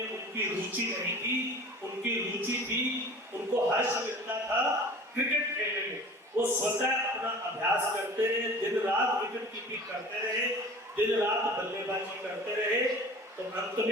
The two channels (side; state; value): both; normal; correlation 0.41